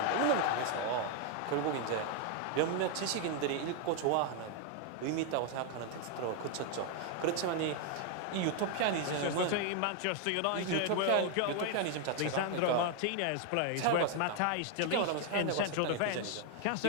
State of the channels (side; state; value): both; different; correlation 0.00